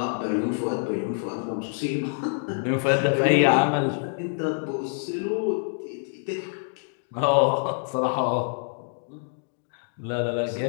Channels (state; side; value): silent; right; digital silence